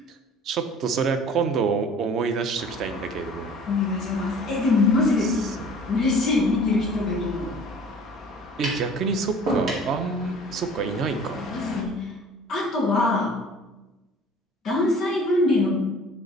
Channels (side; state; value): both; normal; correlation 0.48